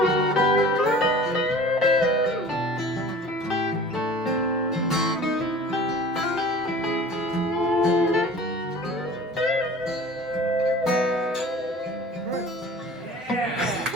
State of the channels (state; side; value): normal; both; correlation 0.43